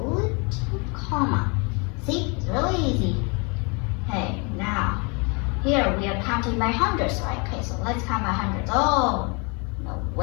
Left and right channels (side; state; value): right; quieter; 32.2 dB